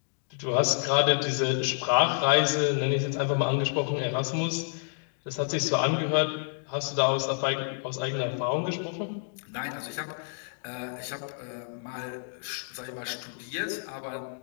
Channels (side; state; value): right; silent; digital silence